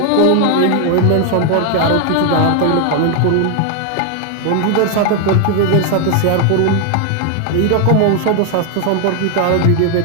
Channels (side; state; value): both; different; correlation 0.00